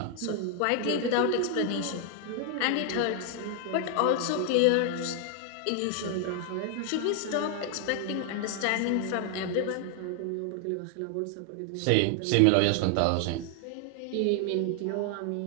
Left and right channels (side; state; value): both; different; correlation 0.00